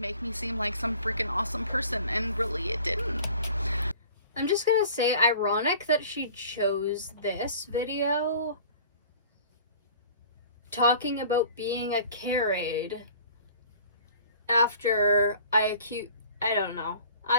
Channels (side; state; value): both; inverted; correlation -0.47